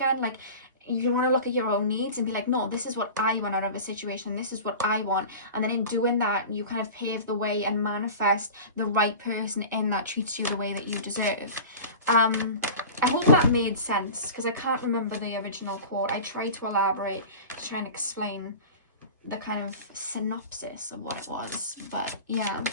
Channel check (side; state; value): both; inverted; correlation -0.35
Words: Like, you want to look at your own needs and be like, no, this is what I want out of a situation, this is what I want. And then in doing that, you kind of pave the way and manifest the right person in that treats you the way that you deserve. I hope that made sense because I can't remember the original quote. I tried to elaborate to try and explain the kind of synopsis of what it was, but yeah.